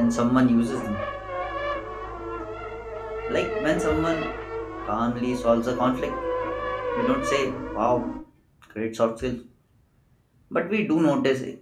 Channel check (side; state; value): both; identical; correlation 1.00